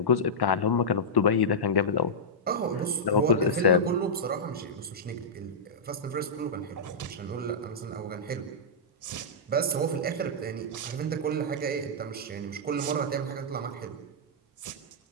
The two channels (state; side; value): normal; both; correlation -0.12